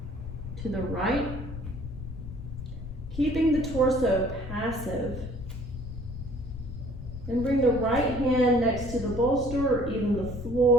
to the right, keeping the torso passive. And bring the right hand next to the bolster or even the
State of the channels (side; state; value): left; noise; rumble, 9 dB below the sound